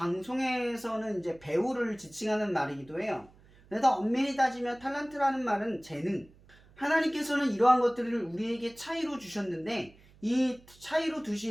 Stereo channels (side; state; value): right; noise; hum, 26 dB below the sound